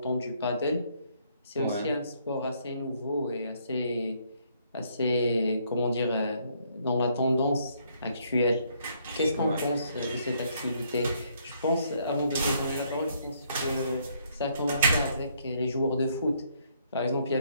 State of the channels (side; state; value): both; inverted; correlation -0.69